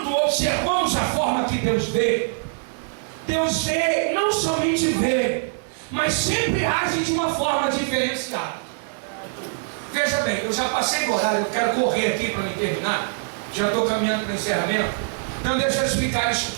observamos a forma que Deus vê, não somente vê, mas sempre age de uma forma diferenciada. Veja bem, eu já passei do horário, eu quero correr aqui para me terminar, já estou caminhando para o encerramento, então deixa eu explicar isso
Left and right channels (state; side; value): silent; left; 63 dB below the other